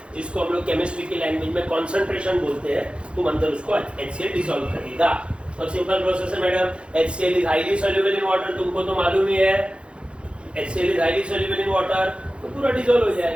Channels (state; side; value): late; left; 0.057 ms